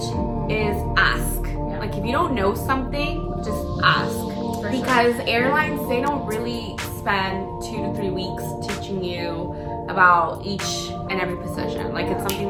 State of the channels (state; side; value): identical; both; correlation 1.00